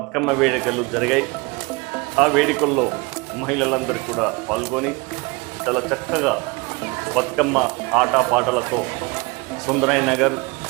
వేడుకలు జరిగాయి. ఆ వేడుకల్లో మహిళలందరూ కూడా పాల్గొని చాలా చక్కగా బతుకమ్మ ఆట పాటలతో సుందరై నగర్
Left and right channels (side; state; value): left; quieter; 26.5 dB